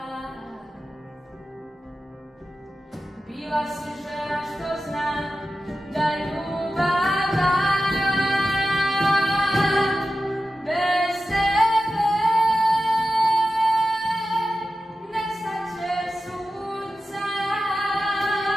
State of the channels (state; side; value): normal; both; correlation 0.93